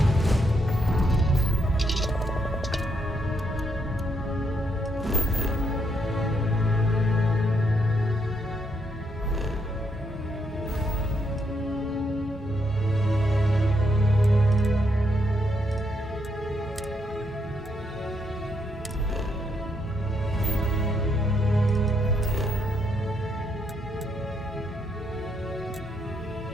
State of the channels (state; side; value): normal; both; correlation 0.76